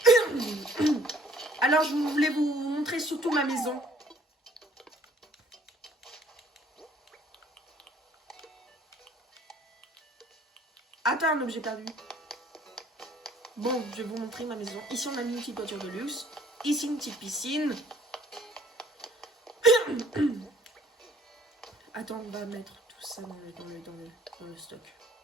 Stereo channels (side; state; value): both; normal; correlation 0.59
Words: Alors, je voulais vous montrer surtout ma maison. Attends, un objet perdu. Bon, je vais vous montrer ma maison. Ici, on a mis une petite voiture de luxe. Ici, une petite piscine. Attends, on va mettre tout ça dans le stock.